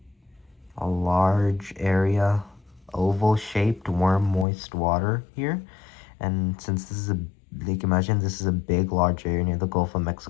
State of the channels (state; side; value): drops out; right; at 4.5 s